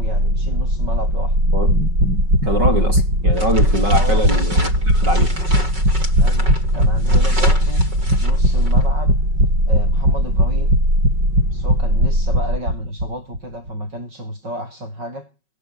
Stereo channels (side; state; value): left; late; 5.4 ms